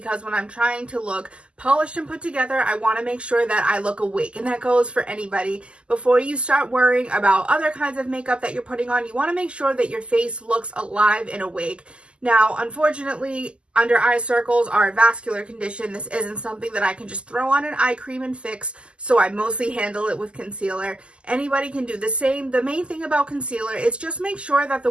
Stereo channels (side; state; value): left; late; 0.052 ms